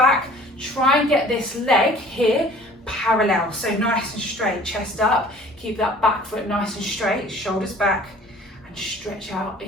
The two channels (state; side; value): normal; both; correlation 0.49